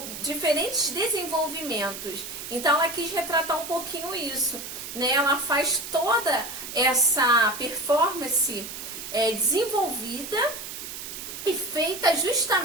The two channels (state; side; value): noise; right; hiss, 9 dB below the sound